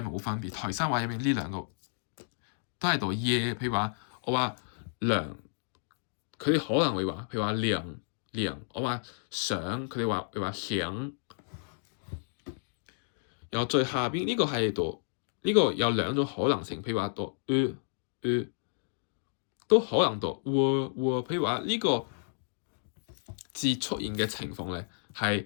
冇分別。台山話入面呢兩個都係讀耶，譬如話我話涼，佢哋可能會話譬如話涼，我話想，佢哋話想。然後最下邊呢個係讀呢個有兩種可能性，譬如話讀都可能讀譬如話呢個字出現嘅情況咧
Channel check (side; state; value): right; silent; digital silence